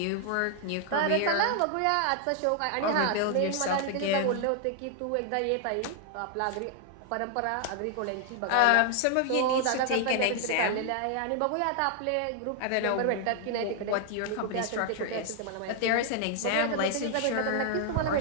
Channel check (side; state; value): both; different; correlation 0.00